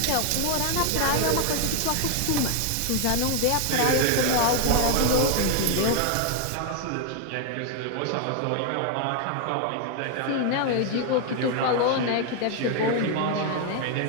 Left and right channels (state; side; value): different; both; correlation 0.00